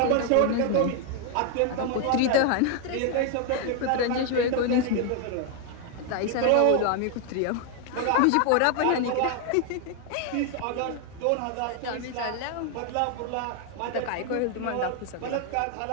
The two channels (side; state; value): both; different; correlation 0.01